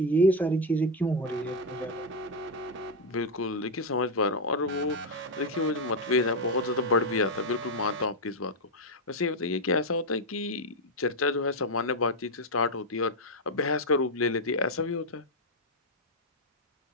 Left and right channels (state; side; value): normal; both; correlation 0.03